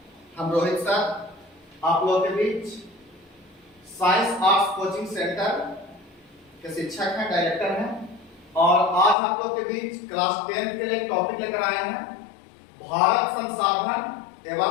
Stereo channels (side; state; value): right; drops out; at 9.2 s